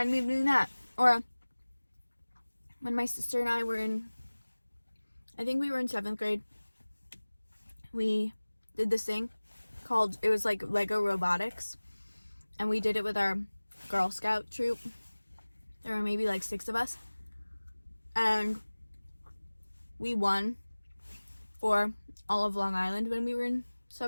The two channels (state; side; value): inverted; both; correlation -1.00